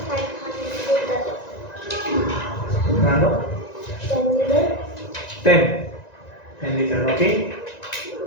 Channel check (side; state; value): right; late; 1.9 ms